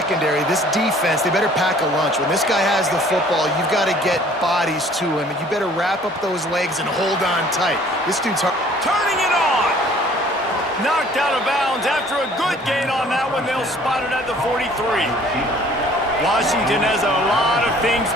this defense, they better pack a lunch. When this guy has the football, you've got to get bodies to him, and you better wrap up those legs and hold on tight. This dude's hard. Turning it on! Knocked out of bounds after a good gain on that one. They'll spot it at the 43. Washington has a lot of things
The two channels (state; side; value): normal; both; correlation 0.54